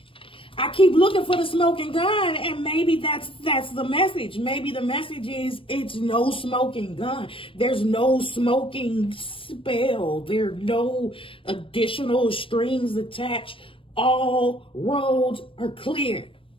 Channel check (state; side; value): late; right; 0.25 ms